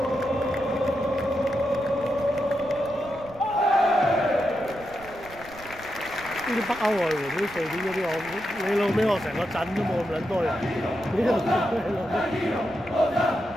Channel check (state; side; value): noise; right; rumble, 20 dB below the sound